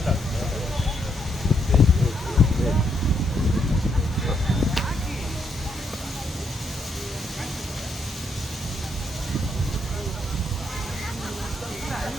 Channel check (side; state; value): both; normal; correlation 0.76